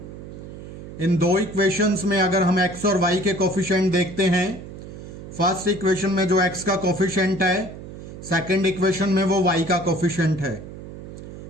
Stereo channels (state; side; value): noise; right; hum, 13 dB below the sound